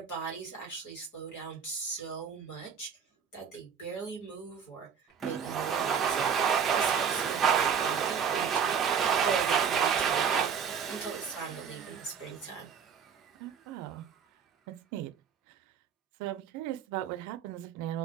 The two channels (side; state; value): left; quieter; 7.0 dB